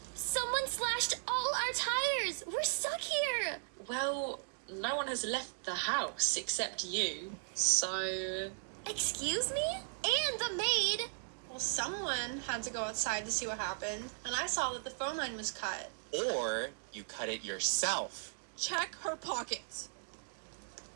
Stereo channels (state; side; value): silent; left; digital silence